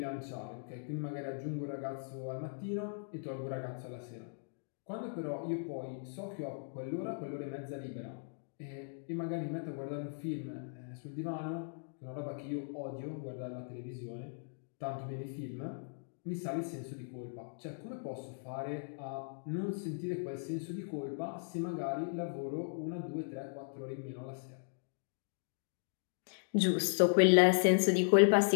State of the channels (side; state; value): right; silent; digital silence